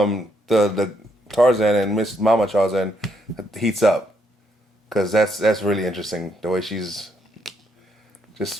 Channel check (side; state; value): both; normal; correlation 0.74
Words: Tarzan and Miss Mama Tarzan heats up, because that's really interesting. The way she's